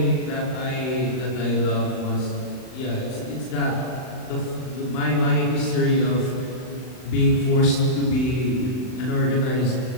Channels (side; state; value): right; late; 39 ms